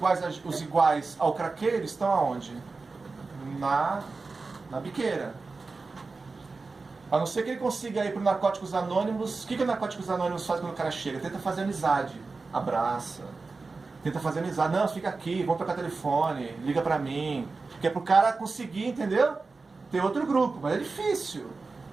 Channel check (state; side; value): quieter; left; 4.0 dB